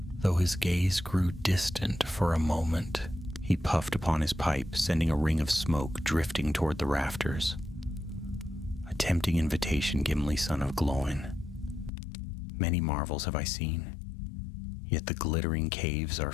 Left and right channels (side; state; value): right; drops out; at 11.9 s